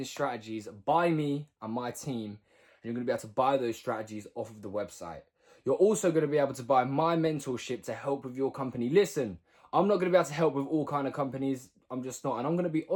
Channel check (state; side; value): identical; both; correlation 1.00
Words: strategies by me and my team. And you're going to be able to buy those strategies off of the website. You're also going to be able to buy my mentorship to help with your company. Listen, I'm not going to be able to help with all kind of companies. I'm just not. And I'm going to be